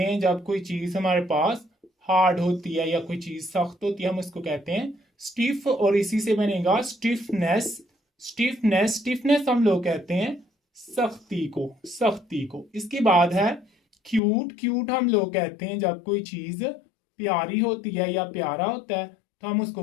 हैं जब कोई चीज हमारे पास हार्ड होती है या कोई चीज सख्त होती है हम उसको कहते हैं स्टिफ, और इसी से बनेगा स्टिफनेस। स्टिफनेस, स्टिफनेस हम लोग कहते हैं सख्ती को, सख्ती को। इसके बाद है क्यूट। क्यूट हम लोग कहते हैं जब कोई चीज प्यारी होती है या प्यारा होता है तो हम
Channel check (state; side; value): drops out; right; at 14.2 s